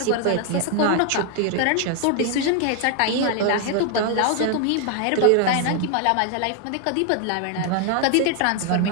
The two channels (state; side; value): different; both; correlation 0.00